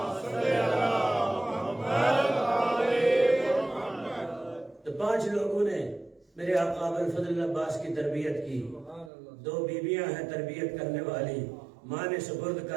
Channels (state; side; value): drops out; left; at 9.1 s